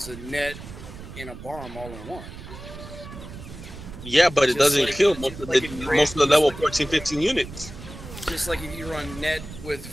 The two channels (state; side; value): noise; right; rumble, 13 dB below the sound